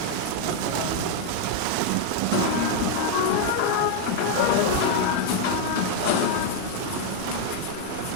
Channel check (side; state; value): both; different; correlation 0.00